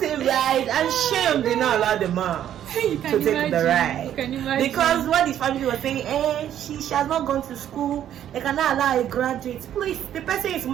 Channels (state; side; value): quieter; left; 10.7 dB